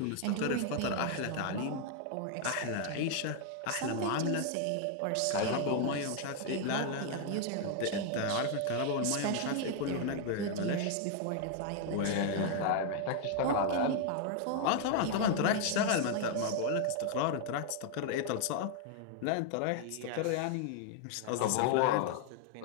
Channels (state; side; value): different; both; correlation 0.00